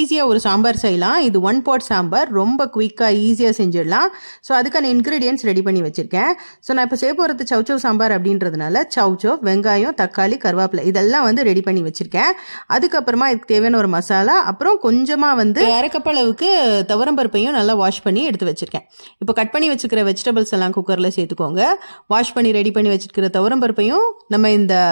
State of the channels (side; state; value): both; inverted; correlation -1.00